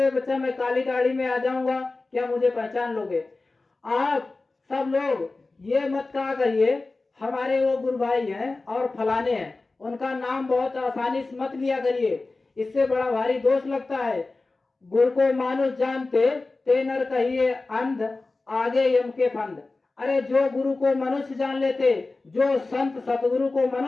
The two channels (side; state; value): right; quieter; 3.5 dB